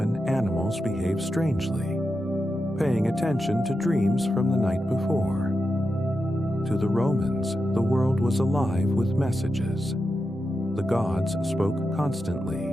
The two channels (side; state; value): both; normal; correlation 0.89